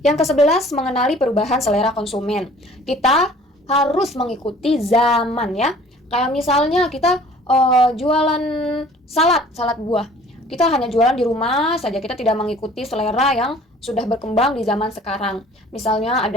Yang ke-11, mengenali perubahan selera konsumen. Kita harus mengikuti zaman ya. Kayak misalnya kita jualan salad buah. Kita hanya jualan di rumah saja, kita tidak mengikuti selera yang sudah berkembang di zaman sekarang. Misalnya ada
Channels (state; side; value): normal; both; correlation 0.51